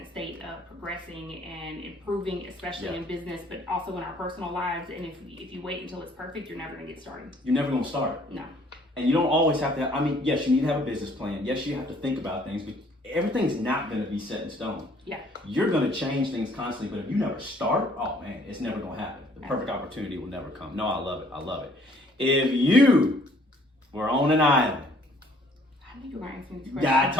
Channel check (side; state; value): both; normal; correlation 0.60